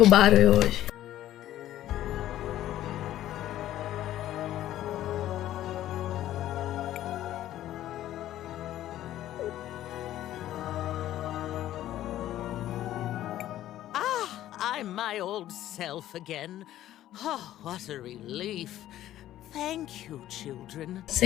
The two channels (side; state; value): right; quieter; 13.2 dB